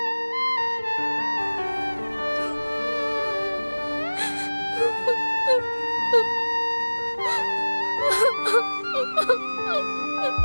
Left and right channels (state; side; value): inverted; both; correlation -1.00